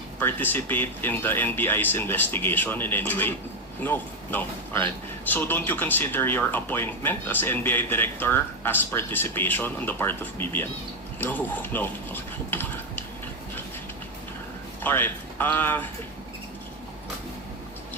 participate in the NBI's investigation in any way? No. No. All right. So don't you consider your appointment as NBI director as participation on the part of BBM? No. No. All right.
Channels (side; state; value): both; normal; correlation 0.06